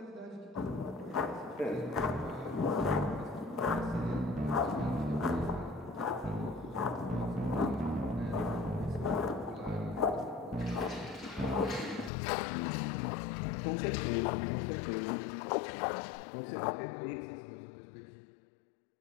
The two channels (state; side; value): drops out; right; at 12.1 s